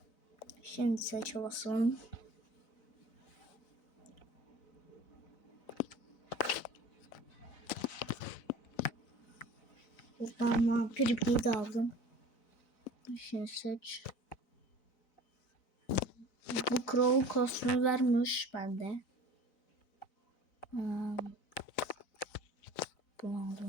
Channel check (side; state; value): right; late; 4.0 ms